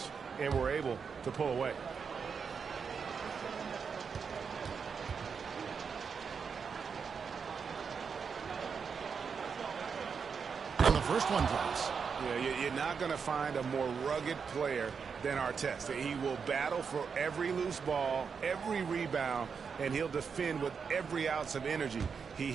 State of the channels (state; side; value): quieter; left; 6.0 dB